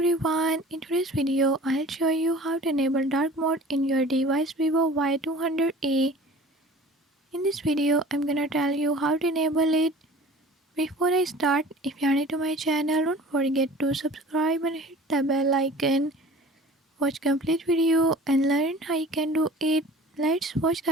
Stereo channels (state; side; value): normal; both; correlation 0.44